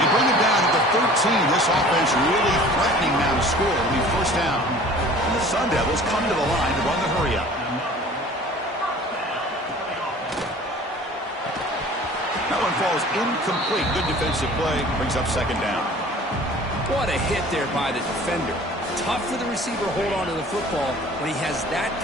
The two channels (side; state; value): both; normal; correlation 0.46